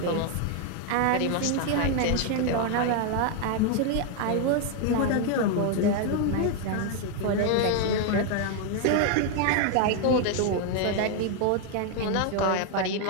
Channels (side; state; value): both; different; correlation 0.01